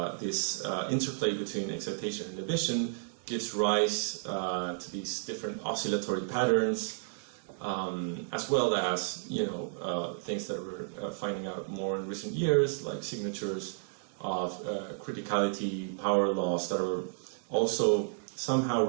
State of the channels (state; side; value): silent; left; digital silence